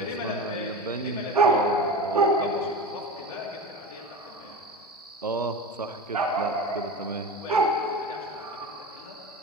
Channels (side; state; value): both; normal; correlation 0.28